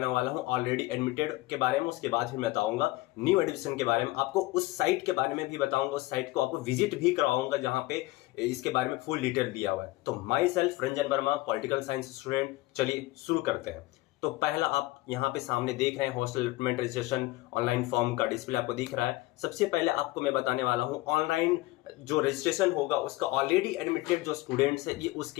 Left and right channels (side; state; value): right; quieter; 19.3 dB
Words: वाला हूं ऑलरेडी एडमिटेड के बारे में, उसके बाद फिर मैं बताऊंगा न्यू एडमिशन के बारे में। आपको उस साइट के बारे में भी बताऊंगा, उस साइट को आपको विजिट भी करवाऊंगा जहां पे इसके बारे में फुल डिटेल दिया हुआ है। तो my self Ranjan Verma, political science student. चलिए शुरू करते हैं। तो पहला आप यहाँ पे सामने देख रहे हैं hostel allotment registration online form का डिस्प्ले आपको दिख रहा है। सबसे पहले आपको मैं बताने वाला हूँ ऑनलाइन जो रजिस्ट्रेशन होगा उसका ऑलरेडी एडमिटेड जो स्टूडेंट्स है ये